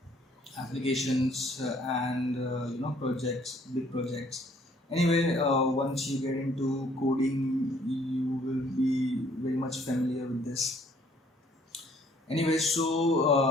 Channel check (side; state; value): both; normal; correlation 0.61